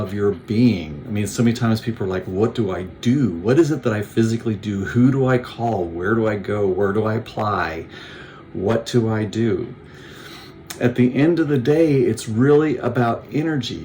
your being. I mean, so many times people are like, what do I do? What is it that I physically do? Who do I call? Where do I go? Where do I apply? What do I do? At the end of the day, it's really about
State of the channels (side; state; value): both; identical; correlation 1.00